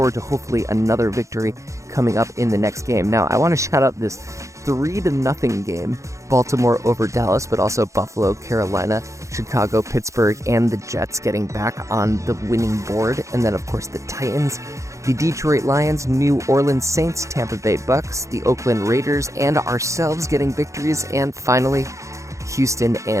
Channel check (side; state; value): left; late; 0.15 ms